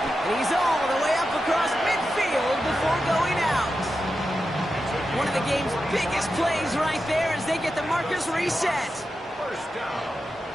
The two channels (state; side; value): normal; both; correlation 0.90